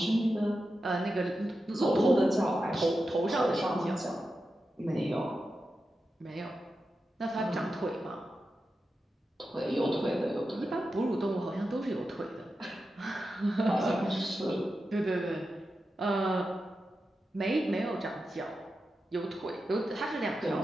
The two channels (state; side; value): normal; both; correlation 0.90